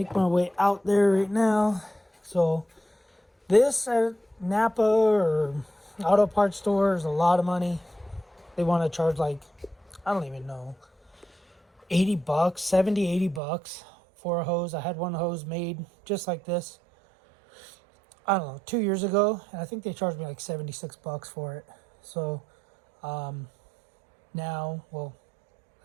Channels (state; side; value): drops out; left; at 13.4 s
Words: my way out there right now. So this at Napa or auto parts store is a lot of money. They want to charge like, I don't even know, $80, $70, $80 for a hose. I had one hose made just like this, I don't know, 2 years ago, and I think they charged me like $76 for it. So now, well,